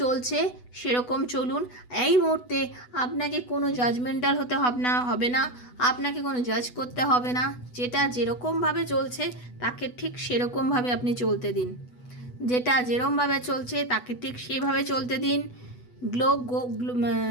চলছে সেরকম চলুন। এই মুহূর্তে আপনাকে কোনো জাজমেন্টাল হতে হবে না, আপনাকে কোনো জাজ করতে হবে না। যেটা যেরকমভাবে চলছে তাকে ঠিক সেরকমভাবে আপনি চলতে দিন, যেটা যেরকমভাবে চলছে তাকে ঠিক সেভাবে চলতে দিন।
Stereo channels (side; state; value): right; late; 8.1 ms